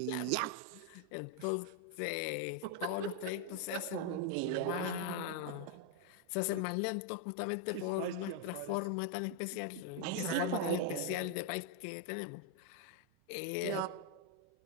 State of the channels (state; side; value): different; both; correlation 0.01